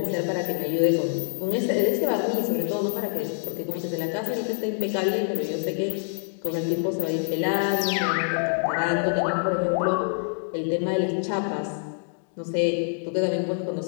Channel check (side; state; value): right; silent; digital silence